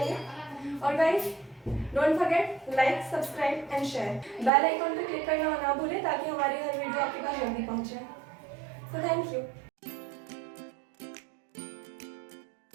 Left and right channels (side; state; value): left; drops out; at 4.5 s